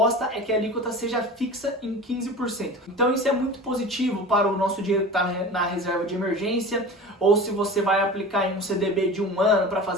é que a alíquota seja fixa em 15%. Então isso é muito positivo para o nosso dinheiro que está na reserva de emergência, ou se você vai aplicar em um CDB de 1 ano para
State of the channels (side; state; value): both; normal; correlation 0.35